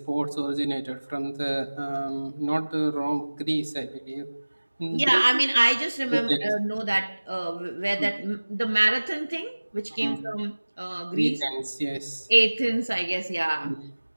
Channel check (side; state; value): both; inverted; correlation -1.00